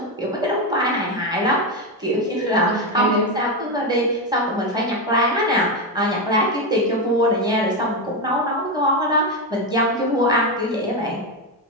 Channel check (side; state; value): both; normal; correlation 0.10